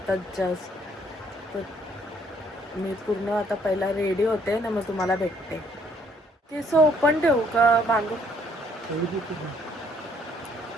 जस्ट. तर मी पूर्ण आता पहिला रेडी होते ना, मग तुम्हाला भेटते. केस ओपन ठेवू का बांधू?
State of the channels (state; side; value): normal; both; correlation 0.65